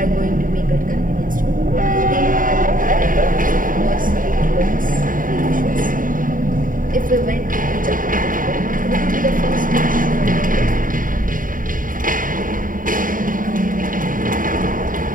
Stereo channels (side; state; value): left; late; 0.39 ms